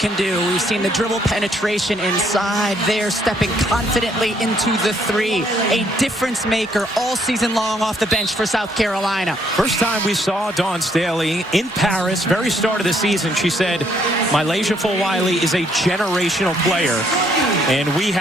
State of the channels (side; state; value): both; normal; correlation 0.69